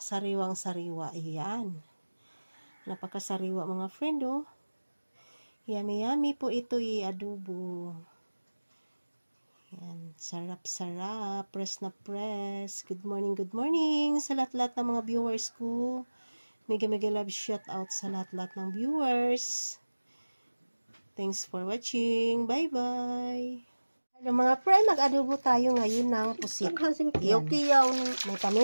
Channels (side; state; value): both; inverted; correlation -1.00